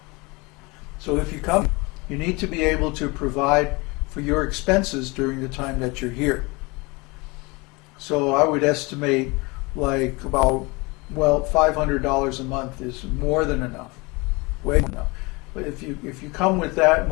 So if you come, you need to be able to provide for your expenses during the time that you're here. So I would estimate like about, well, $500 a month is more than enough, way more than enough. But if you come with that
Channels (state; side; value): quieter; right; 25.9 dB